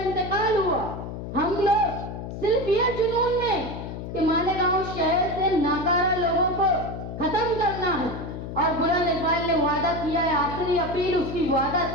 हुआ। हम लोग सिर्फ ये जुनून में कि मालेगांव शहर से नाकारा लोगों को खत्म करना है, और बुलंद इकबाल ने वादा किया है, आखिरी अपील उसकी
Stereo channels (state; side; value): noise; left; hum, 8 dB below the sound